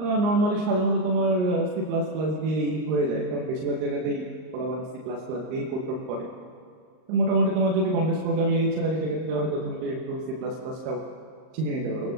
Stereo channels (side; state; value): left; late; 38 ms